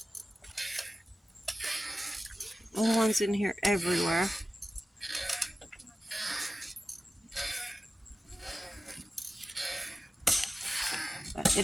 Little ones in here everywhere. But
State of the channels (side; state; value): both; normal; correlation 0.94